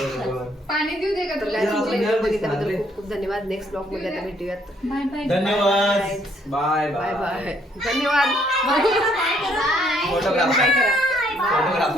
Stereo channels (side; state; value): both; normal; correlation 0.68